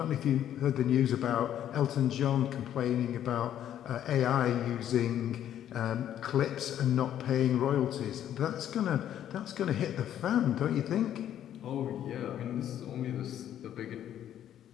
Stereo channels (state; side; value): quieter; right; 10.8 dB